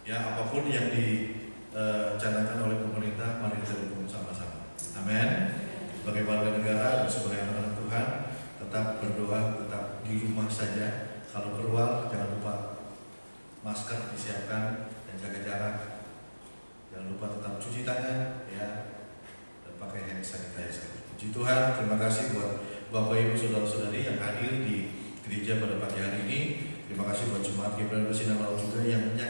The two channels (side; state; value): both; inverted; correlation -1.00